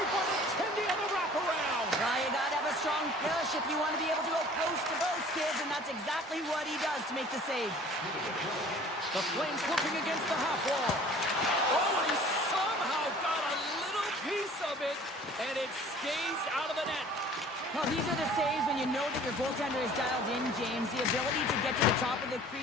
by the Tendy on the wraparound. Well, you got to have a strong push if you want to be able to go post to both, kids, and that's exactly what he does to make the save. The Flames looking against the half wall. Oh, and he somehow got a little piece of it, and it stays out of the net. Well, these are the saves when you know that your goaltender is dialed in, James. The ability to get to the top of the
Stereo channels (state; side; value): normal; both; correlation 0.49